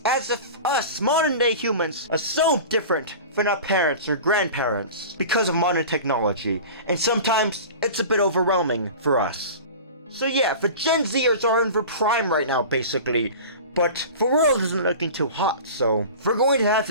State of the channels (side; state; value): both; inverted; correlation -0.35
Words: as if us, modern day humans, are so different than our parents or grandparents because of modern technology, and sometimes it's a bit overwhelming for us. So yeah, the Gen Zers are in their prime right now, basically, but the world isn't looking too hot, so we're going to have